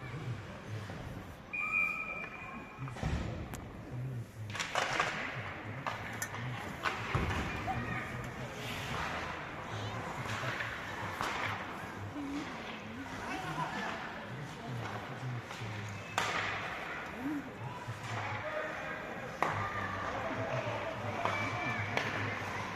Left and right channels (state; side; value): identical; both; correlation 1.00